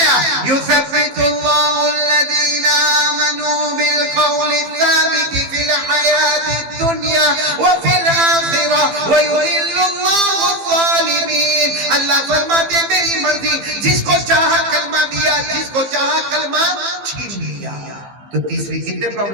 یثبت اللہ الذین آمنوا بالقول الثابت فی الحیاۃ الدنیا وفی الآخرہ ویضل اللہ الظالمین. اللہ فرماتے میری مرضی، جس کو چاہا کلمہ دیا، جس کو چاہا کلمہ چھین لیا. تو تیسری کتنے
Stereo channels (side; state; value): left; late; 15 ms